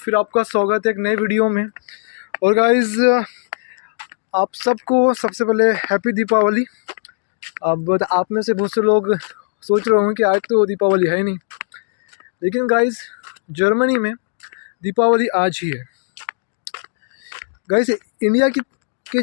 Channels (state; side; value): silent; right; digital silence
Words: आपका स्वागत है एक नए वीडियो में। और गाइस, आप सबको सबसे पहले हैप्पी दीपावली। अब आप में से बहुत से लोग सोच रहे होंगे कि आज तो दीपावली है ही नहीं, लेकिन गाइस जर्मनी में दीपावली आज ही है। गाइस इंडिया के